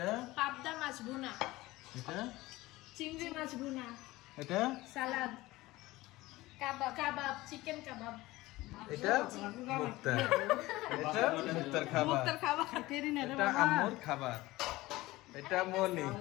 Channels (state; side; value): quieter; right; 18.9 dB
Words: পাবদা মাছ ভুনা। এটা চিংড়ি মাছ ভুনা। এটা সালাদ। কাবাব চিকেন কাবাব। এটা মুক্তা। এটা মুক্তার খাবার। এটা আম্মুর খাবার। এটা মনি